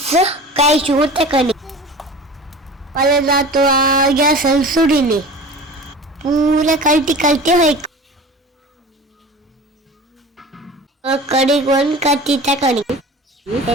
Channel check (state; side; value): normal; both; correlation 0.38